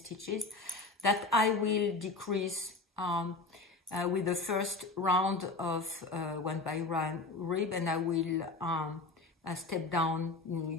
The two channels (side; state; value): right; quieter; 3.5 dB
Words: that I will decrease with the first round of 1x1 rib, and I will step down,